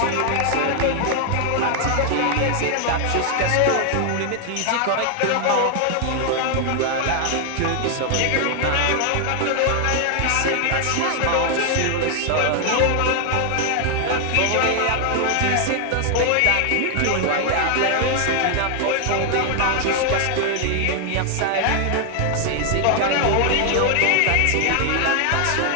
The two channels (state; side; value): different; both; correlation 0.00